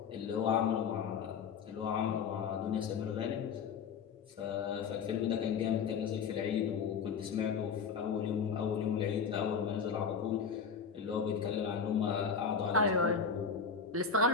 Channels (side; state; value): right; quieter; 6.1 dB